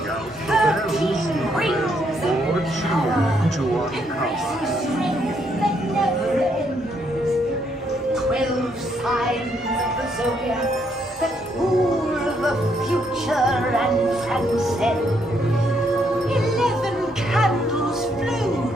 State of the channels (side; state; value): both; normal; correlation 0.73